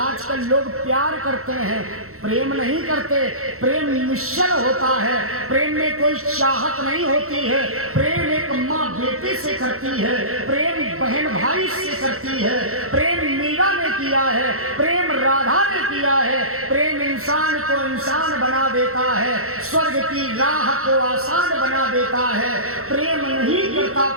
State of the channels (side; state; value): left; late; 0.63 ms